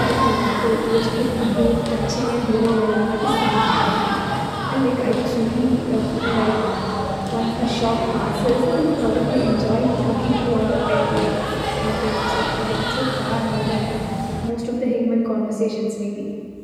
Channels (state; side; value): identical; both; correlation 1.00